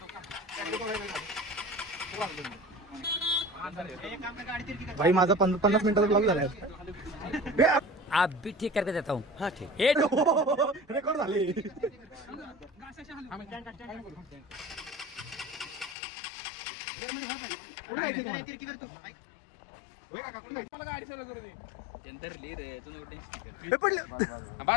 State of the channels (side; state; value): right; drops out; at 16.0 s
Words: भाई माझा 50 मिनिटाचा ब्लॉग झालाय. आप भी ठीक करके देता हूँ. हाँ ठीक. रेकॉर्ड झाले. गाडी चालू करू दे. पडलं.